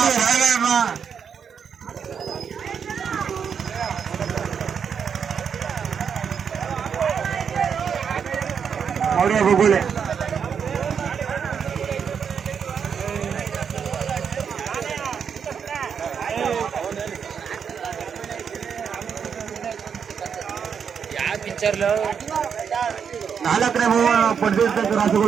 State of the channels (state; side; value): quieter; left; 7.0 dB